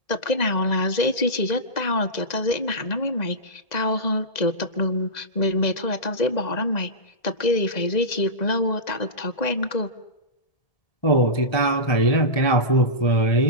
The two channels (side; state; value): right; late; 1.9 ms